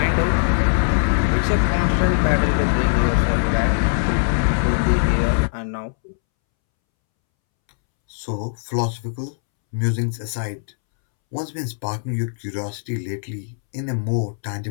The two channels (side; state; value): right; silent; 65 dB below the other